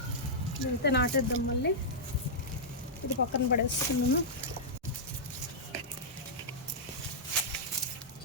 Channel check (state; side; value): normal; both; correlation -0.11